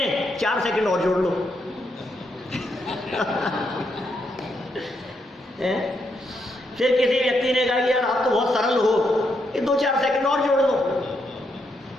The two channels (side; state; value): both; normal; correlation 0.79